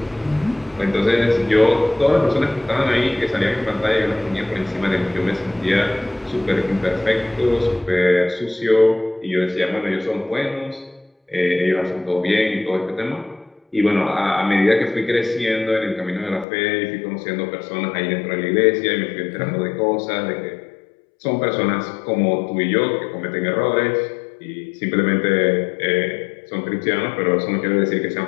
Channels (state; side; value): drops out; right; at 16.4 s